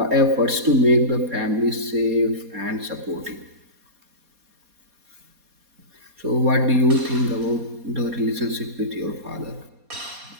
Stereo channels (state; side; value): late; left; 4.2 ms